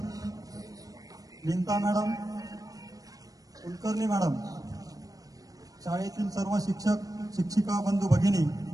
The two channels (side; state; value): left; late; 0.18 ms